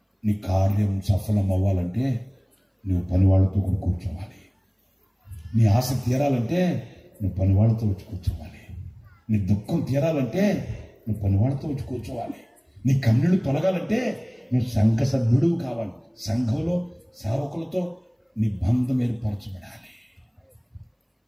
నీ కార్యం సఫలం అవ్వాలంటే నువ్వు పనివాళ్ళతో కూడా కూర్చోవాలి. నీ ఆశ తీరాలంటే నువ్వు పనివాళ్ళతో వచ్చి కూర్చోవాలి. నీ దుఃఖం తీరాలంటే నువ్వు పనివాళ్ళతో వచ్చి కూర్చోవాలి. నీ కన్నీళ్లు తొలగాలంటే నువ్వు సంఘ సభ్యుడు కావాలి. సంఘంలో సేవకులతో నీ బంధం ఏర్పరచబడాలి.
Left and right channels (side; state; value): both; identical; correlation 1.00